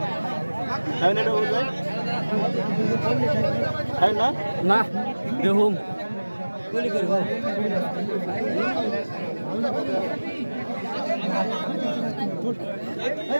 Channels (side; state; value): both; inverted; correlation -1.00